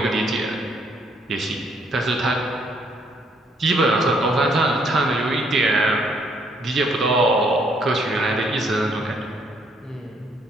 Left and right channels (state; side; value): normal; both; correlation 0.68